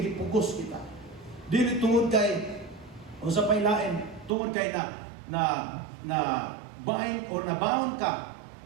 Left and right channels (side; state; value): left; drops out; at 4.4 s